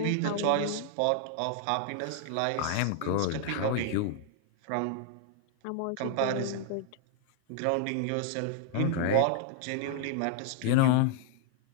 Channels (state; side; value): different; both; correlation 0.00